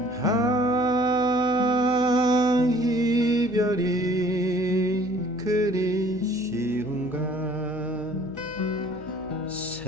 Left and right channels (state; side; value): noise; left; hum, 19 dB below the sound